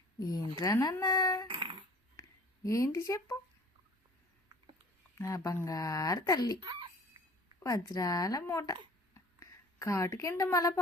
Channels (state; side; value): normal; both; correlation 0.47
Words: ఏంట్రా నాన్న? ఏంటి చెప్పు. నా బంగారు తల్లి, వజ్రాల మూట. కాటు కింద మళ్ళా